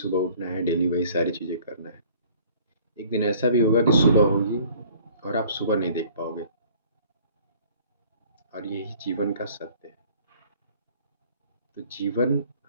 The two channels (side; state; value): both; inverted; correlation -0.54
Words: उठना है, डेली वही सारी चीज़ें करना है। एक दिन ऐसा भी होगा कि सुबह होगी और आप सुबह नहीं देख पाओगे, और यही जीवन का सत्य है। तो जीवन